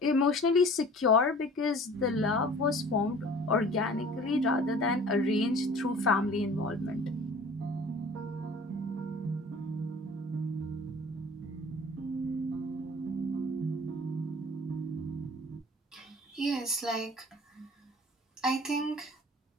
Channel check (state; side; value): normal; both; correlation 0.46